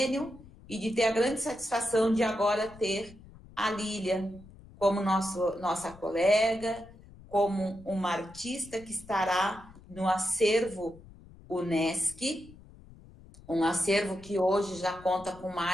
e de ter a grande satisfação de agora ter a Lilian como nossa colega, como uma artista que estará no acervo Unesc, um acervo que hoje já conta com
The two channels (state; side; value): noise; left; rumble, 21 dB below the sound